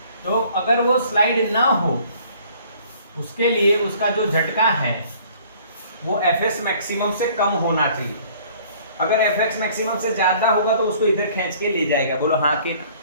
तो अगर वो स्लाइड ना हो, उसके लिए उसका जो झटका है वो एफएस मैक्सिमम से कम होना चाहिए। अगर एफएस मैक्सिमम से ज्यादा होगा तो उसको इधर खींच के ले जाएगा। बोलो हाँ कि ना?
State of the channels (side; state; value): both; inverted; correlation -0.55